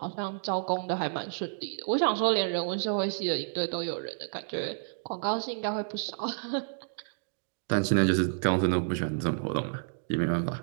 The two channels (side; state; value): left; silent; digital silence